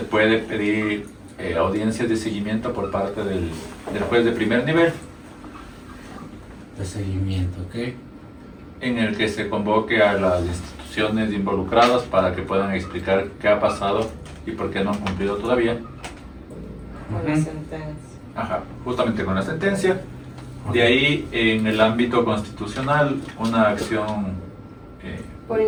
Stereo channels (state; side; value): identical; both; correlation 1.00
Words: puede pedir audiencias de seguimiento por parte del juez de primer nivel, De seguimiento, ok. en el que se convoque a las instituciones involucradas para que puedan explicar qué ha pasado y por qué no han cumplido todavía. Con la sentencia. Justamente con la sentencia. De ahí, en el ámbito constitucional, una acción por